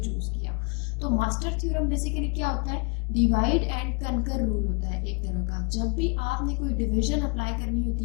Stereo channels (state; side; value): quieter; right; 32.4 dB